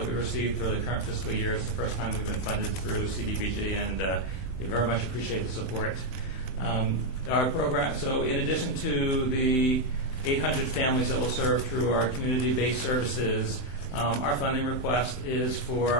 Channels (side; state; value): right; late; 20 ms